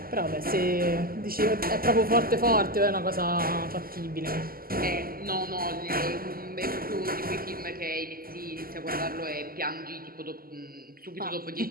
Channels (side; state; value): left; late; 0.42 ms